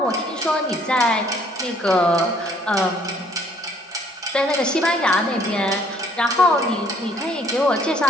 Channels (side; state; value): both; normal; correlation 0.62